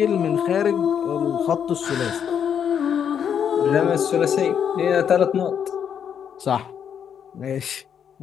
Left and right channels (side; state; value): right; quieter; 8.2 dB